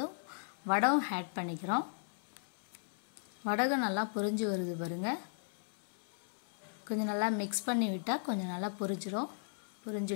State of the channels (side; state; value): right; silent; 53 dB below the other